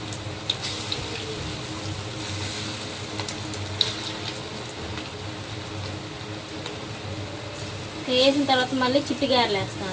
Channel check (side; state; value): both; identical; correlation 1.00